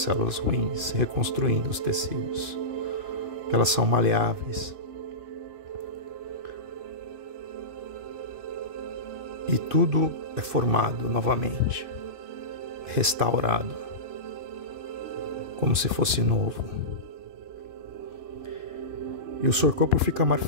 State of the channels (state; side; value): late; left; 2.5 ms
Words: células ruins, reconstruindo os tecidos, que elas são maleáveis. E tudo é formado novamente, restaurado, como se fosse novo. E o seu corpo fica